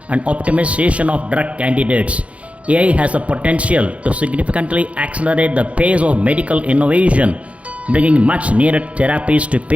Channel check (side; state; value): left; late; 0.064 ms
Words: and optimization of drug candidates, AI has the potential to significantly accelerate the pace of medical innovation, bringing much needed therapies to